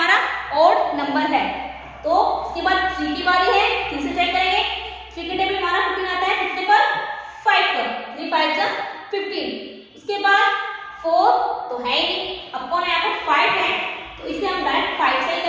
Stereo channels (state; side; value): identical; both; correlation 1.00